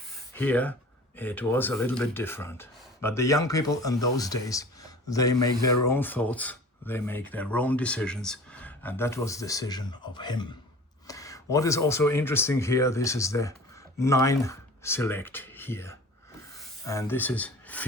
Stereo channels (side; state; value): both; normal; correlation 0.42